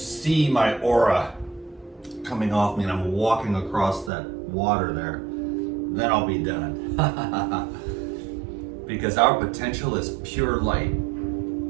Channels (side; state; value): left; drops out; at 4.1 s